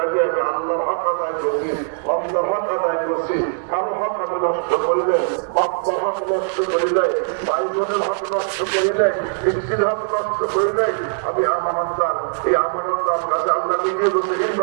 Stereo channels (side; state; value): left; silent; digital silence